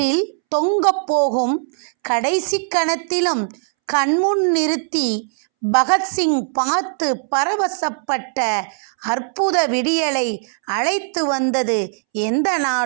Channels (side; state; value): left; silent; 66 dB below the other